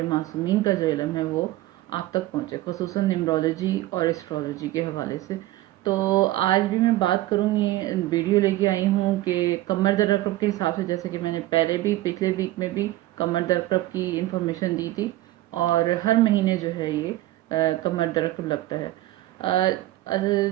معصومین کا جو علم ہے وہ آپ تک پہنچے، خصوصاً نیمرولوجی اور اسٹرولوجی کے حوالے سے. تو آج بھی میں بات کروں گی، ویڈیو لے کے آئی ہوں کہ کمر در عقرب کے حساب سے، جیسے کہ میں نے پہلے بھی پچھلے ویک میں بھی کمر در عقرب کی انفارمیشن دی تھی، اور ہر مہینے جو ہے یہ کمر در عقرب لگتا ہے.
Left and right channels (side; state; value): left; quieter; 16.3 dB